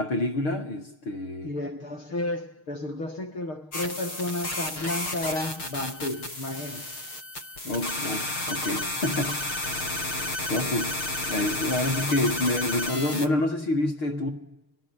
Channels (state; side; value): late; right; 6.5 ms